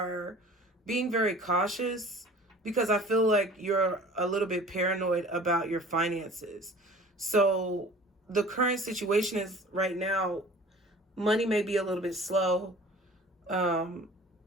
being very cautious because I feel like you're a little bit paranoid about your finances. So the current situation is right now, money may be a little bit slow.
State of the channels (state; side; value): normal; both; correlation 0.45